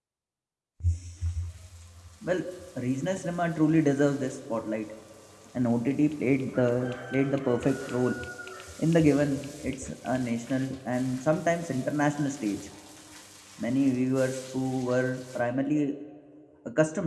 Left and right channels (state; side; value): identical; both; correlation 1.00